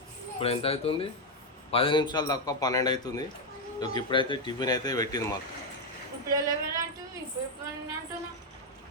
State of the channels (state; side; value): normal; both; correlation 0.04